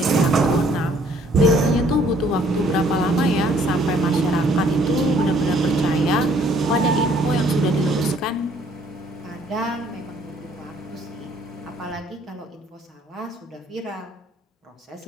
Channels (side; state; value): both; normal; correlation 0.62